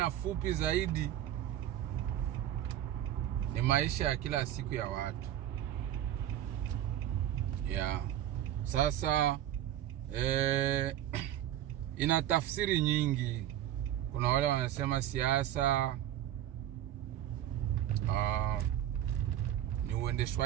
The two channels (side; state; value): left; quieter; 12.0 dB